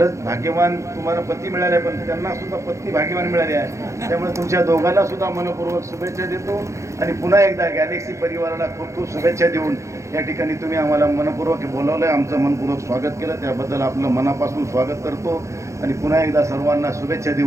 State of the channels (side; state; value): left; late; 0.14 ms